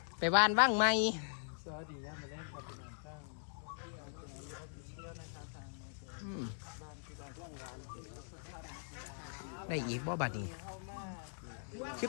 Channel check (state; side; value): silent; right; digital silence